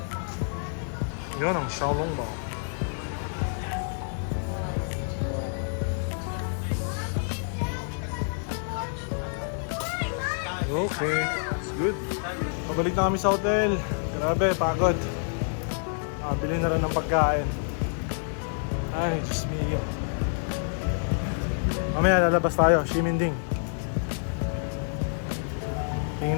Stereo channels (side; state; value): right; silent; 60 dB below the other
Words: Yun ang Xiaolongbao. Okay, it's good. Pabalik na kami sa hotel. Grabe, pagod. Bili na rin ng pagkain. Ay, Diyos mio. Mamaya lalabas tayo, Ximending.